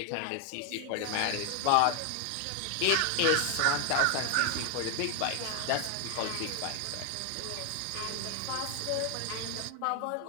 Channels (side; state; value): both; different; correlation 0.01